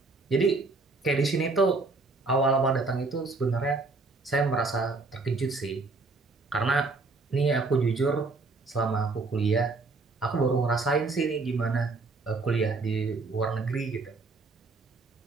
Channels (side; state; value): left; quieter; 3.7 dB